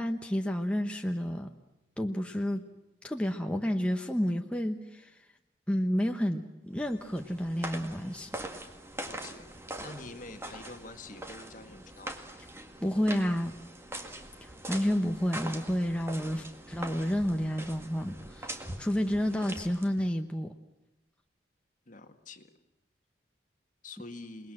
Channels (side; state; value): both; normal; correlation 0.93